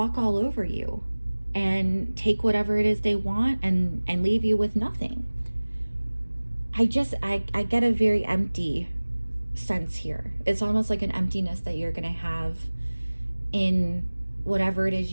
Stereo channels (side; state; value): both; inverted; correlation -1.00